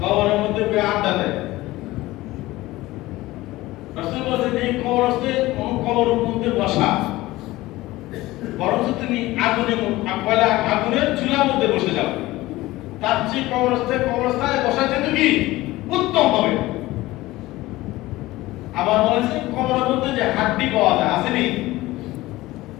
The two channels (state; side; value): quieter; right; 18.2 dB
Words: কবরের মধ্যে বয়ে আড্ডা দেয়। রাসূল বলেছেন এই কবরস্থে কবরের মধ্যে বসা বরং তুমি আগুনের চুলার মধ্যে বসে যাও, তার চেয়ে কবরস্থানে বসা যেত কি উত্তম হবে। আবার বলেছে কবরের মধ্যে যে হাড্ডি পাওয়া যায়, আসেনি